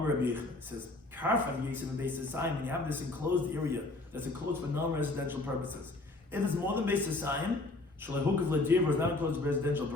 Rabbi Yechon says, karfaf Yisrael and Beis Hasayim, when you have this enclosed area that's enclosed for non-residential purposes. If it's more than Beis Hasayim, Shalahukav Ladir is not enclosed for residential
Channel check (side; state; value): right; quieter; 3.0 dB